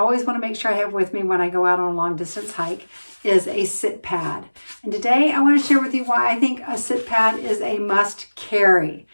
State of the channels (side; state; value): both; inverted; correlation -1.00